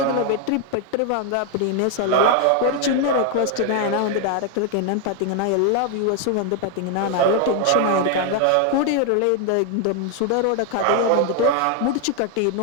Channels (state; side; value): different; both; correlation 0.01